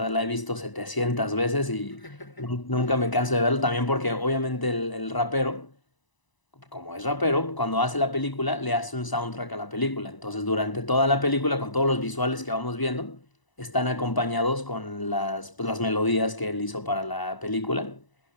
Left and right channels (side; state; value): right; late; 1.0 ms